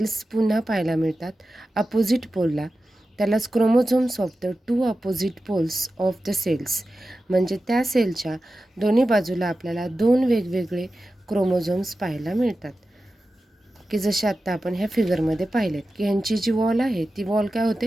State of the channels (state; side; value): normal; both; correlation 0.93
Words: पुन्हा पाहायला मिळतात अपोजिट पोलला. त्यालाच chromosomes of the 2 opposite poles of the cells. म्हणजे त्या सेलच्या दोन्ही बाजूला आपल्याला 2 वेगवेगळे क्रोमोझोम्स पाहायला मिळतात, की जसे आत्ता आपण ह्या फिगरमध्ये पाहिलेत की ह्यांची जी वॉल आहे ती वॉल काय